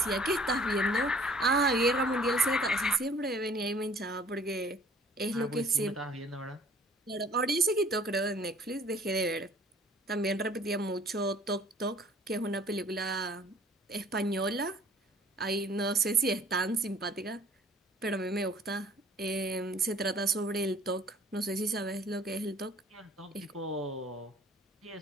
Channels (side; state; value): both; normal; correlation 0.54